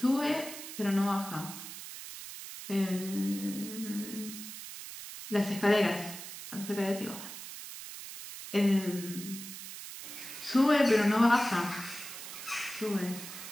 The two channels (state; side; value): noise; right; hiss, 11 dB below the sound